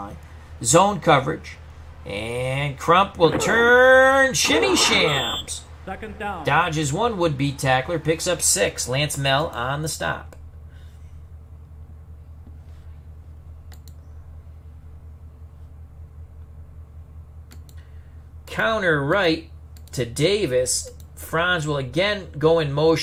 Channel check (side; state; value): both; identical; correlation 1.00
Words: Zone coverage. And Crump will turn. Shimmy shams. 2nd down. Dodges one would-be tackler. Picks up 6. Lance Mell on the stop. Counter right to Davis. Franz will again go in